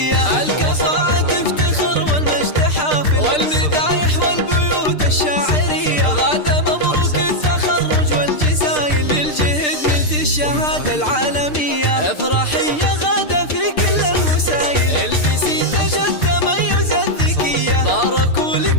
الكفاءة تفتخر والمجد حافل، والمدايح والبيوت الشاعرية، غدا مبروك التخرج والجزايل، بالجهد نلت الشهادة العالمية، افرحي يا غدا في كل المسايل، البسي تاج التميز الذكية، باركوا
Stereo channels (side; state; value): right; late; 6.7 ms